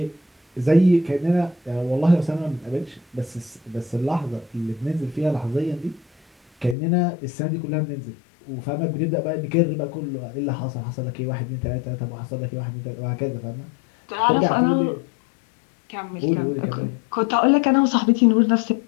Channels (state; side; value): drops out; right; at 6.8 s